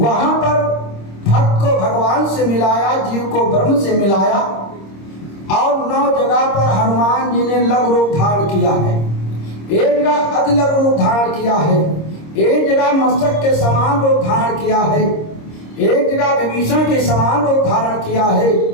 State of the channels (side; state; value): right; late; 26 ms